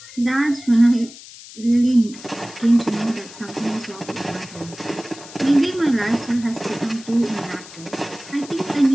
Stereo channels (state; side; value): noise; left; hiss, 17 dB below the sound